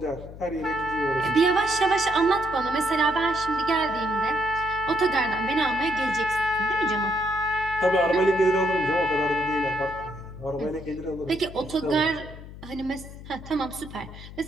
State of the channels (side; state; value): left; noise; hum, 14 dB below the sound